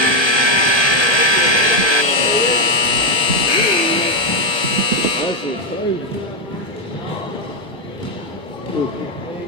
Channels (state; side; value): late; right; 1.2 ms